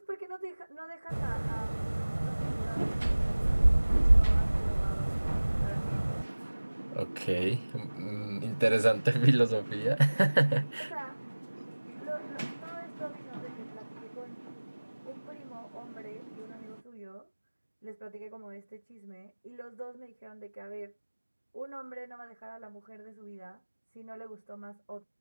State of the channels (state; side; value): inverted; both; correlation -1.00